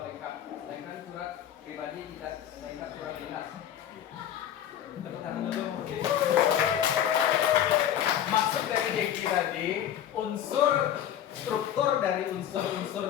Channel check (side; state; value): right; quieter; 10.5 dB